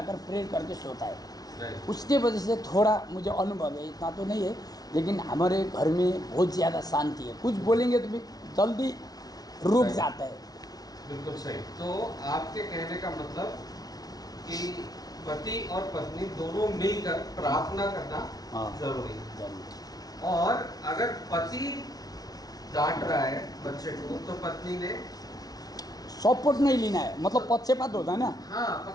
प्रेयर करके सोता है। उसके वजह से थोड़ा मुझे अनुभव है, इतना तो नहीं है, लेकिन हमारे घर में बहुत ज़्यादा शांति है। कुछ बोलेंगे तो भी जल्दी रुक जाता है। बिल्कुल सही। तो आपके कहने का मतलब कि पति और पत्नी दोनों मिलकर प्रार्थना करना जरूरी है। और अगर पति डांट रहा है बच्चे को तो पत्नी ने सपोर्ट नहीं लेना है, मतलब पक्षपात होता है ना। हाँ,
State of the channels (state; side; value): late; right; 0.19 ms